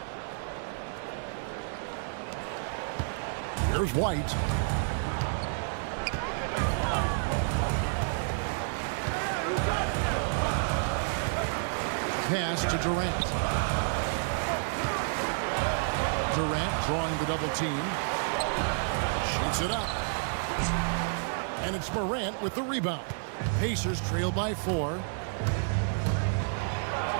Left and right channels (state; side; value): silent; left; 58 dB below the other